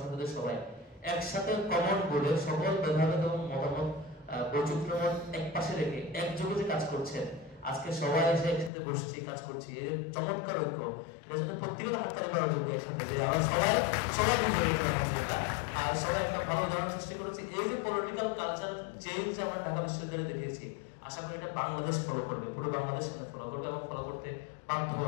সংসদের সবাই একসাথে কমন বোর্ডে সকল বিভাগ এবং মতামত বৈচিত্র্যময় এক পাশে রেখে একযোগে যে কাজ করছেন, আজকে সবাই এসে একসাথে বসছি, কাজ করছি, এই চমৎকার ঐক্য, এটা জন্য প্রত্যেকের হাততালি করার যোগ্য একসাথে যে আমরা সবাই সবাই আর সবাই একটা ভালো উদাহরণ সৃষ্টি করেছি। এই যে পলিটিক্যাল কালচার চেঞ্জ আমরা ঢাকা বিশ্ববিদ্যালয়ে দেখেছি, আশা করি এটা বাংলাদেশ ফলো করবে, পুরো বাংলাদেশ ফলো করবে এবং ফলো করতে বাধ্য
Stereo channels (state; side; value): drops out; right; at 8.7 s